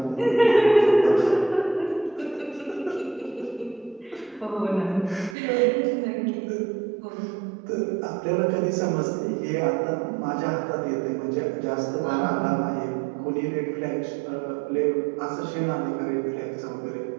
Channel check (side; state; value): left; drops out; at 5.4 s